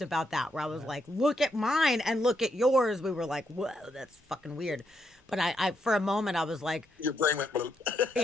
about that, where I was like, look at mine and look at yours. We were like, whoa, that's fucking weird. But I for a moment, I was like, Your brain went bloop.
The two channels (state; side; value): normal; both; correlation 0.78